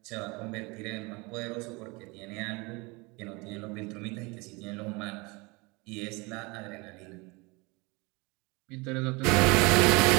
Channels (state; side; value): quieter; left; 26.6 dB